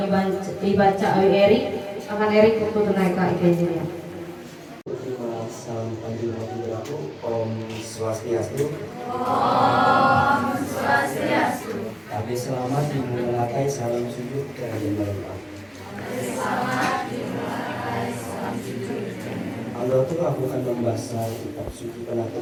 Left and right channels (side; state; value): both; identical; correlation 1.00